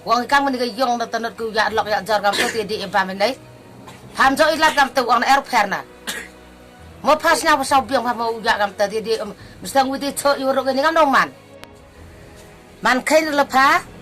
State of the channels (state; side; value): identical; both; correlation 1.00